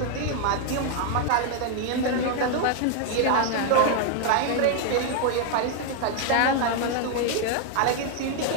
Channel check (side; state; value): both; different; correlation 0.01